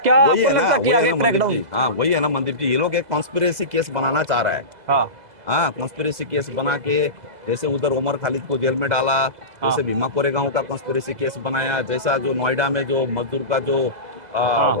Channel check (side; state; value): left; late; 2.0 ms